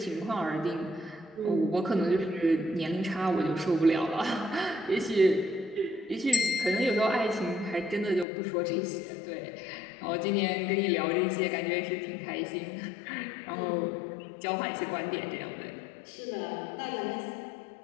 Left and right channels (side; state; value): right; drops out; at 8.2 s